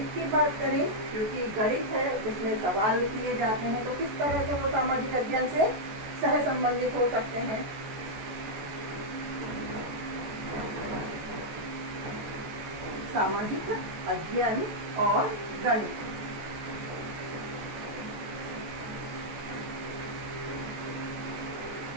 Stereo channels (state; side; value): late; left; 14 ms